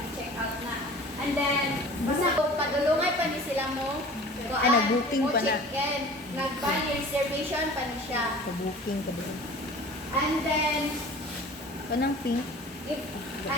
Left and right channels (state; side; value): normal; both; correlation 0.43